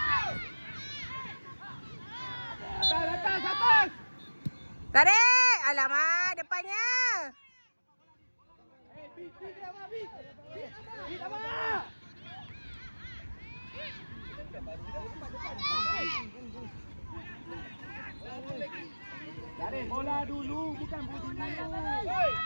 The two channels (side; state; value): both; inverted; correlation -1.00